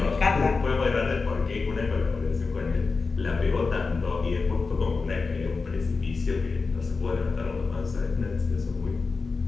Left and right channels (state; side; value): quieter; right; 4.3 dB